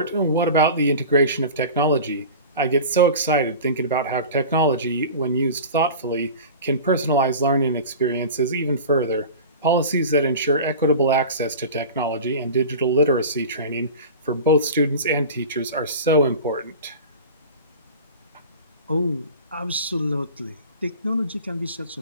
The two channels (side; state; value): both; inverted; correlation -0.35